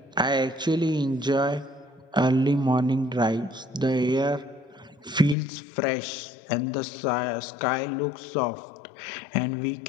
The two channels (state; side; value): drops out; right; at 5.4 s